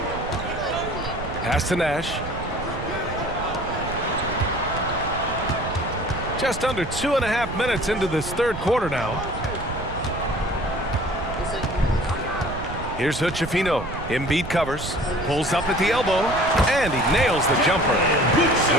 Pass to Nash. Just under 2.5 minutes into this third quarter now. Here's Hood-Schifino. Embiid covers, pulls up at the elbow, and he nails the jumper.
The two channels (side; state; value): right; noise; rumble, 9 dB below the sound